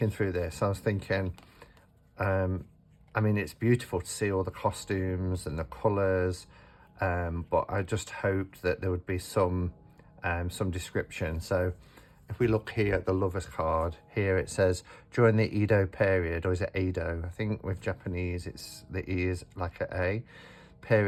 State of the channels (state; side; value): identical; both; correlation 1.00